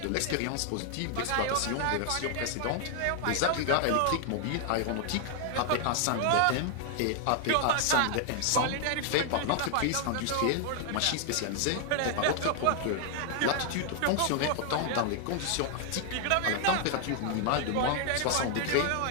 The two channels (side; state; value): both; different; correlation 0.00